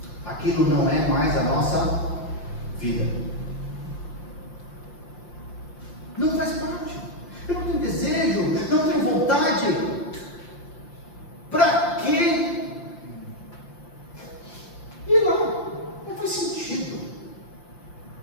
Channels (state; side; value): late; right; 5.8 ms